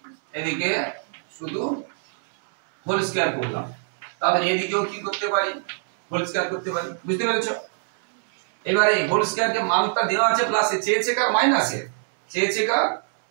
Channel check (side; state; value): left; silent; 63 dB below the other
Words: এদিকে শুধু হোল স্কয়ার করলাম। তাহলে এদিকেও কি করতে পারি? হোল স্কয়ার করতে পারি, বুঝতে পেরেছো? এবারে হোল স্কয়ার কে মানটা দেওয়া আছে প্লাসে, চেয়েছে কার? মাইনাসে, চেয়েছে কার?